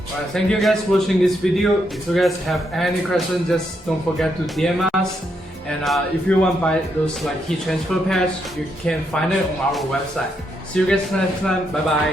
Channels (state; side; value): normal; both; correlation 0.78